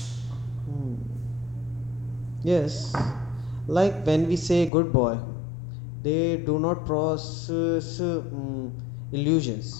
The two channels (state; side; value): drops out; right; at 4.7 s